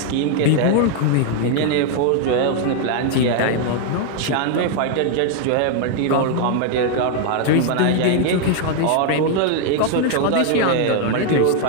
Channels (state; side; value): different; both; correlation 0.00